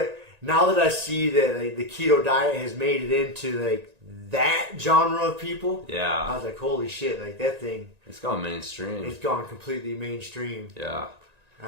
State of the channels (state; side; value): late; left; 1.9 ms